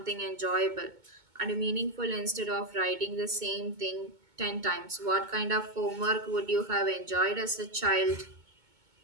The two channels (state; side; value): late; left; 2.2 ms